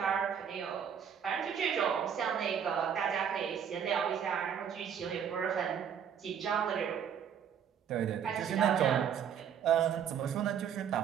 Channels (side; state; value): left; quieter; 8.3 dB